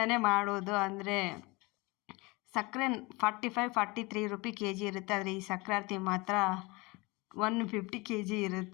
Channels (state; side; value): quieter; right; 24.9 dB